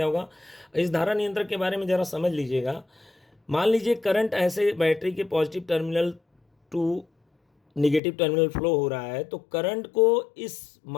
होगा। इस धारा नियंत्रक के बारे में ज़रा समझ लीजिएगा। मान लीजिए करंट ऐसे बैटरी के positive terminal to negative terminal flow हो रहा है, तो करंट को इस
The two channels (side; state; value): right; drops out; at 8.0 s